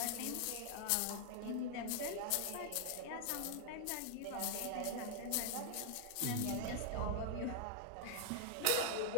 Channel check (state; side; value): different; both; correlation 0.00